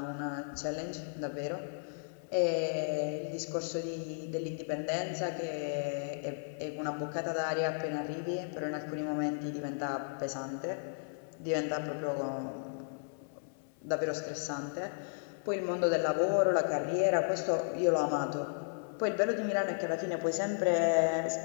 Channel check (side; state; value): right; silent; 55 dB below the other